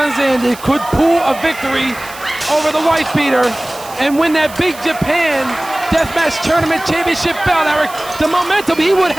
Zandig could pull a victory over the Whitebeater and win that Big Japan Deathmatch Tournament Championship belt, Eric, the momentum he would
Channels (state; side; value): noise; right; hiss, 17 dB below the sound